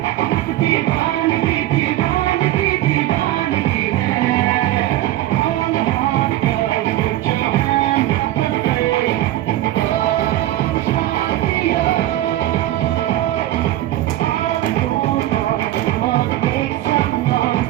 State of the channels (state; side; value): quieter; left; 14.5 dB